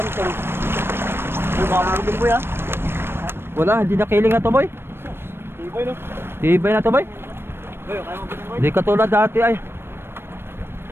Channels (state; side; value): late; left; 0.11 ms